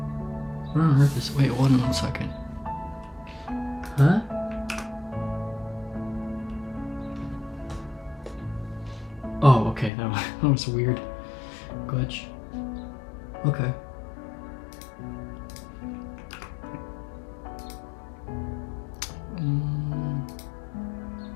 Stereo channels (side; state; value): right; drops out; at 9.9 s